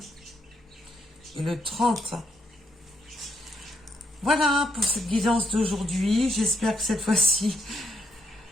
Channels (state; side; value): normal; both; correlation 0.75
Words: et le 30. Voilà pour cette guidance d'aujourd'hui. J'espère que cette fois-ci,